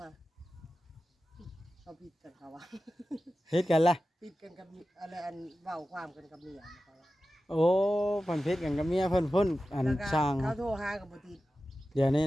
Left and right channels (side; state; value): both; normal; correlation 0.94